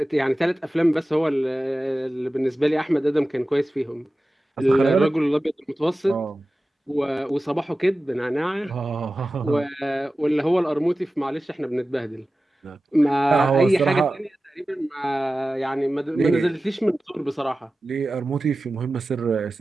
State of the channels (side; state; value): both; normal; correlation 0.95